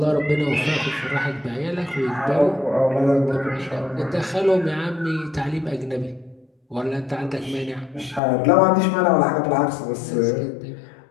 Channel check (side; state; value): right; drops out; at 8.2 s